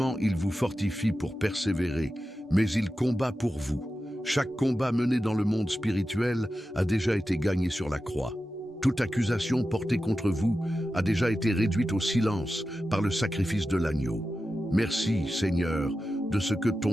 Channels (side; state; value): both; normal; correlation 0.92